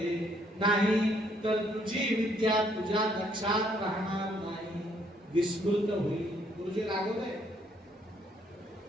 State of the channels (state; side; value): normal; both; correlation 0.68